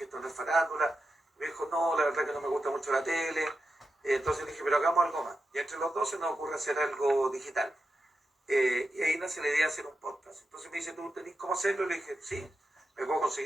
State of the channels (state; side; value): normal; both; correlation 0.89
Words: esto no es farándula. Me dijo, no, la verdad que no me gusta mucho la tele. Entonces le dije, pero hagamos algo más. Y entre los dos se nos ocurre hacer algo digital. Y ahí nace la idea de hacer un podcast. Entonces me dice, ¿tú tenés cómo hacerlo? Y le dije, sí, me puedo